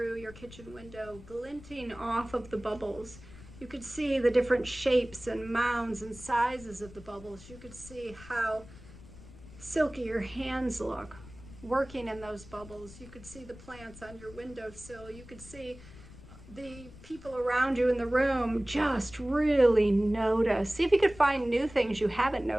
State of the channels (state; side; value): noise; left; rumble, 18 dB below the sound